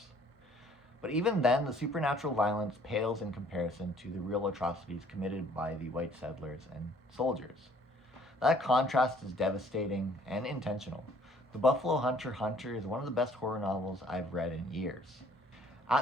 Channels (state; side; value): normal; both; correlation 0.58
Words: But even then, the supernatural violence pales in comparison to the real atrocities committed by the white settlers and soldiers. That contrast is devastating and intentional. The Buffalo Hunter is one of the best horror novels I've read in years.